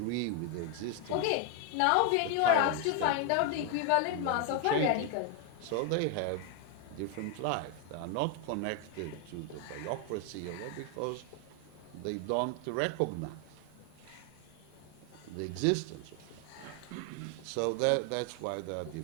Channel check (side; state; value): both; different; correlation 0.01